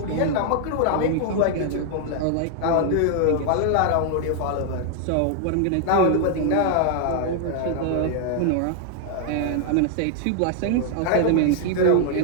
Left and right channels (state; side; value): different; both; correlation 0.00